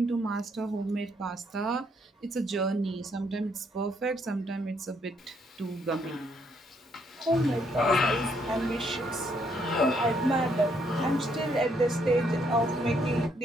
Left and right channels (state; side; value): normal; both; correlation 0.72